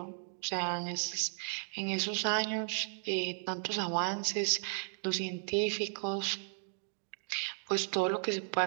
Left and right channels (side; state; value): left; silent; digital silence